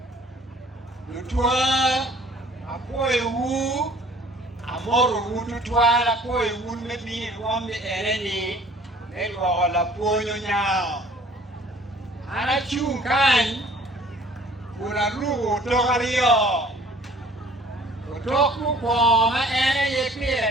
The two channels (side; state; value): both; normal; correlation 0.53